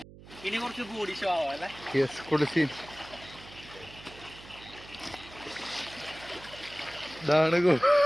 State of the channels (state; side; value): noise; right; hum, 19 dB below the sound